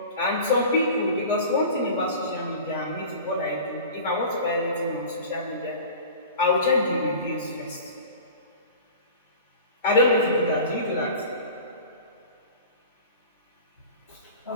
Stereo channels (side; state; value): both; inverted; correlation -0.38